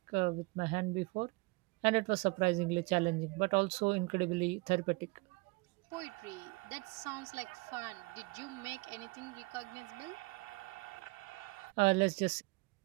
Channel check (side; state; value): left; quieter; 26.8 dB